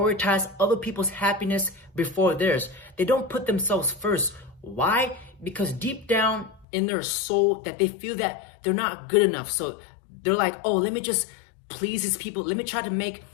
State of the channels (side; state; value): right; drops out; at 6.7 s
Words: other people's happiness before theirs. They don't put themselves first. Why? Because deep down in their soul that they feel that they're not good enough. So they're like, oh, let me just please these people. Let me try to make